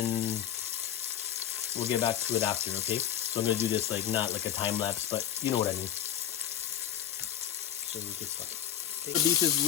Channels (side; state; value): right; quieter; 10.4 dB